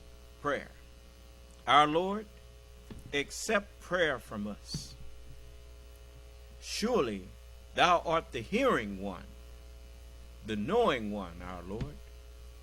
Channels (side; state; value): both; identical; correlation 1.00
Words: prayer: Our Lord, accept prayer from us. Surely thou art the hearing one, the knowing one, our Lord,